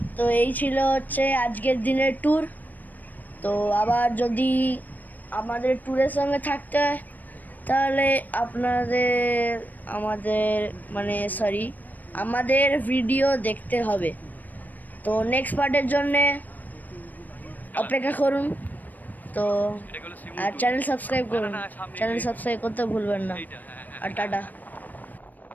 তো এই ছিল হচ্ছে আজকের দিনের ট্যুর। তো আবার যদি আমাদের ট্যুরের সঙ্গে থাকতে হয় তাহলে আমাদের ভিডিও দেখতে হবে। তো নেক্সট পার্টের জন্যে অপেক্ষা করুন। তো আর চ্যানেল সাবস্ক্রাইব করুন, চ্যানেল সাবস্ক্রাইব করতে ভুলবেন না। আর টাটা।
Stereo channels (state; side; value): late; right; 0.084 ms